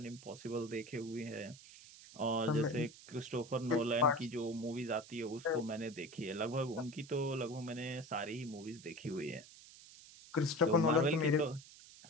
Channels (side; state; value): right; noise; hiss, 19 dB below the sound